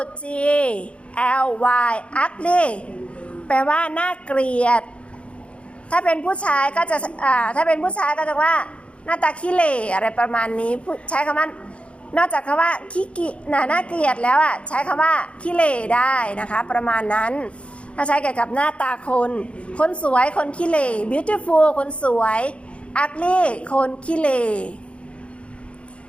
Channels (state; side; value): late; right; 0.060 ms